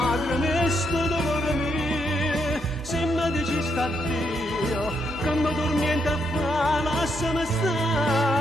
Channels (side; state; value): both; normal; correlation 0.78